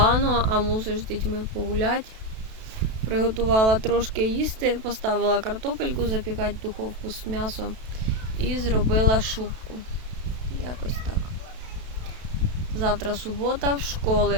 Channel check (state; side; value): late; left; 32 ms